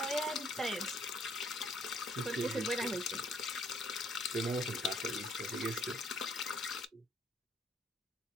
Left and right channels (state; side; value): normal; both; correlation 0.64